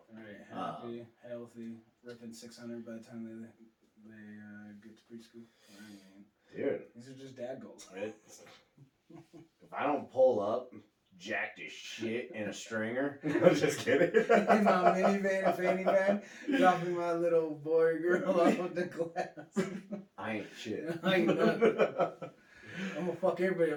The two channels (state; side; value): identical; both; correlation 1.00